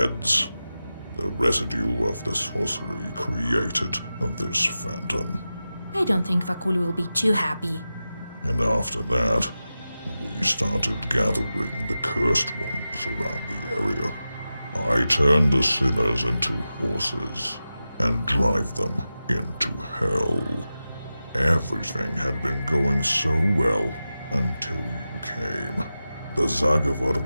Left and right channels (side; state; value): both; inverted; correlation -0.93